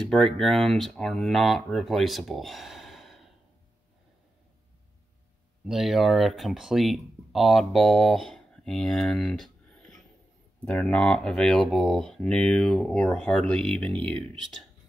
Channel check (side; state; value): both; normal; correlation 0.90